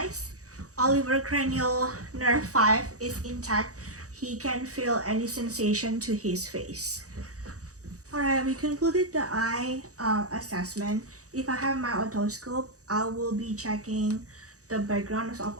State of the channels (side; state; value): left; late; 0.66 ms